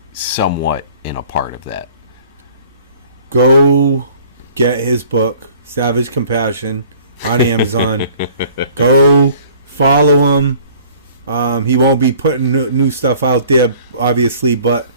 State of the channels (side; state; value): both; inverted; correlation -0.52